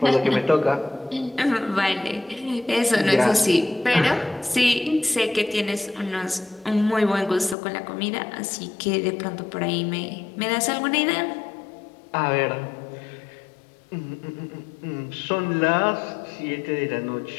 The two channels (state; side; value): drops out; right; at 7.6 s